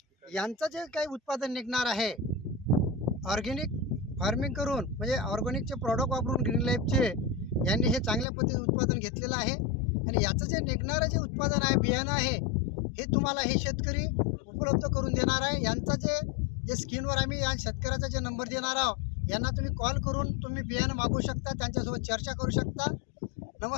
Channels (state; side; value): drops out; right; at 8.2 s